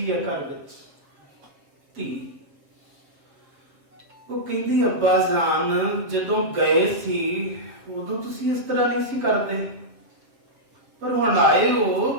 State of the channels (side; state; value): left; late; 7.7 ms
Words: ਹੈ ਘਰ ਵਿੱਚ, ਧੀ। ਉਹ ਕਹਿੰਦੀ ਅੱਬਾ ਜਾਨ ਜਦੋਂ ਗਏ ਸੀ ਉਦੋਂ ਤੁਸੀਂ ਇਸ ਤਰ੍ਹਾਂ ਨਹੀਂ ਸੀ ਕਰਦੇ, ਪਰ ਹੁਣ ਆਏ